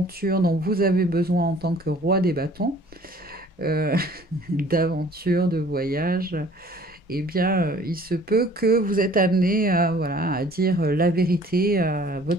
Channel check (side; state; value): both; normal; correlation 0.53